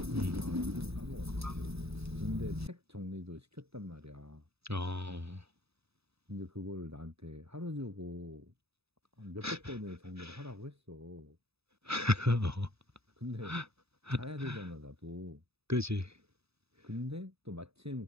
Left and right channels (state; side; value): late; left; 0.78 ms